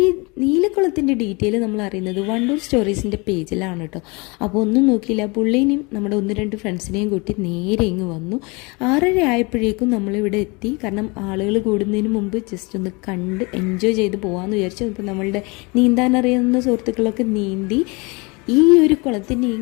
നീലക്കുളത്തിൻ്റെ ഡീറ്റെയിൽ നമ്മൾ അറിയുന്നത് വണ്ടൂർ സ്റ്റോറീസിൻ്റെ പേജിലാണ് കേട്ടോ. അപ്പോൾ ഒന്നും നോക്കിയില്ല, പുള്ളീനെയും നമ്മുടെ 1-2 ഫ്രണ്ട്സിനെയും കൂട്ടി നേരെ ഇങ്ങ് വന്നു. 6:30 ആയപ്പോഴേക്കും നമ്മളിവിടെ എത്തി. കാരണം ആളുകൾ കൂടുന്നതിന് മുമ്പ് ജസ്റ്റ് ഒന്ന് കണ്ട് എൻജോയ് ചെയ്ത് പോകാമെന്ന് വിചാരിച്ചു. അപ്പോൾ നമ്മളുടെ നീന്താൻ അറിയുന്ന സുഹൃത്തുക്കളൊക്കെ നീന്തി. ഈ ഒരു കുളത്തിന്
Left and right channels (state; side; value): quieter; right; 27.8 dB